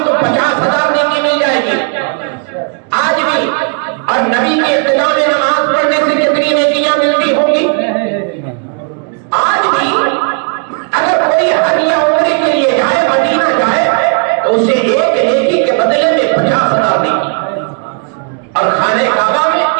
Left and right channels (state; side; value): quieter; left; 39.5 dB